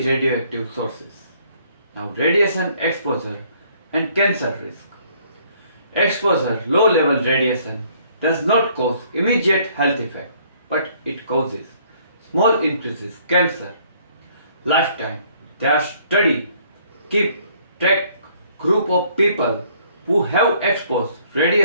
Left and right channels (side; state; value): both; inverted; correlation -0.62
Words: sources. Now radiation exposure and cancer risk. Exposure low level radiation does not cause immediate health effect, but it causes small increases cancer. Lifetime. Their study keep track group of people who have exposed